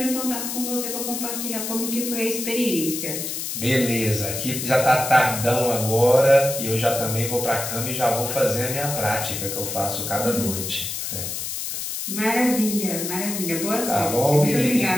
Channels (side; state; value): left; noise; hiss, 4 dB below the sound